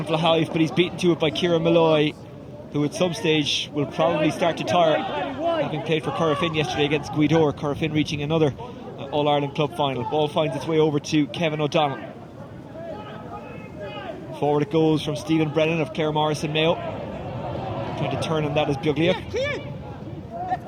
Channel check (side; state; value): both; identical; correlation 1.00